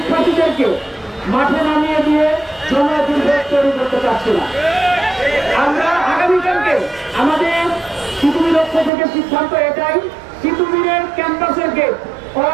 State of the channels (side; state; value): left; drops out; at 8.9 s